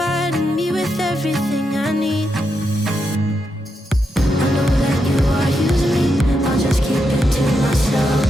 me with everything I need. I know that you are using me, I'll just keep it to myself.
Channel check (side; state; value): both; normal; correlation 0.84